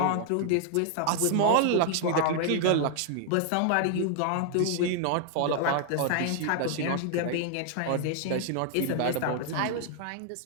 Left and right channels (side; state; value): both; different; correlation 0.00